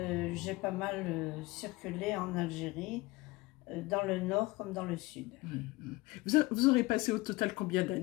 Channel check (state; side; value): quieter; right; 21.4 dB